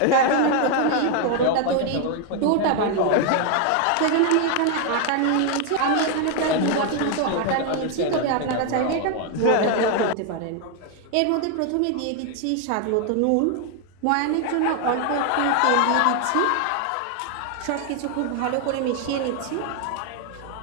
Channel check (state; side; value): different; both; correlation 0.00